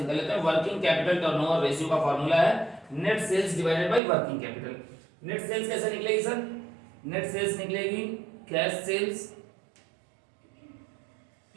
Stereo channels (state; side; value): drops out; left; at 4.0 s